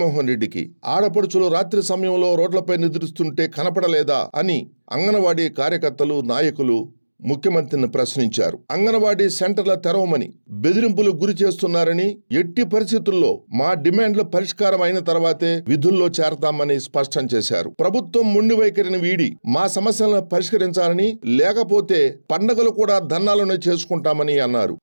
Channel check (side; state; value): both; inverted; correlation -1.00